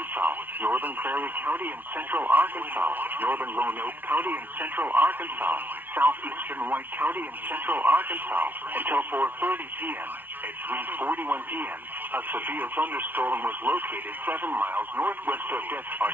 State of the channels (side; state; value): left; late; 0.089 ms